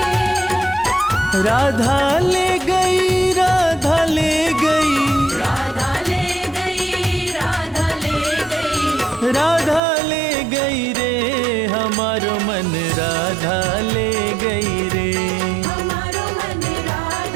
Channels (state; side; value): drops out; left; at 9.8 s